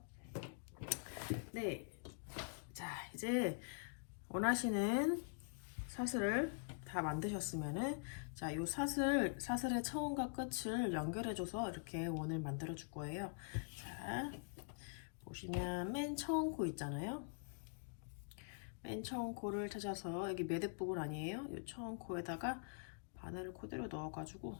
네, 자 이제 원하시는 사슬을 다 만드셨으면은 자, 요 사슬의 처음과 끝을 연결해줘서 이렇게 원을 만들어 줄 거예요. 자, 보시면 맨 처음 코 있잖아요. 맨 처음 코를 찾아서 여기 매듭 부분 아니에요? 이 처음 코에다가 바늘을 그대로 넣어가지고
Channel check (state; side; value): silent; right; digital silence